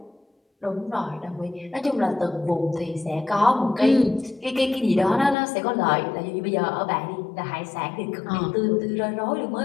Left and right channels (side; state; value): right; drops out; at 5.4 s